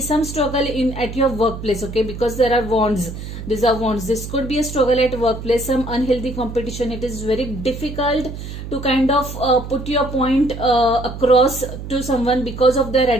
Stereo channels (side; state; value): right; noise; hum, 9 dB below the sound